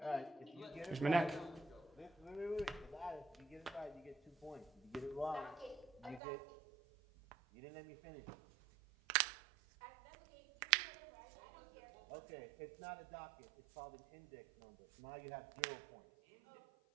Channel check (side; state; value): left; drops out; at 6.2 s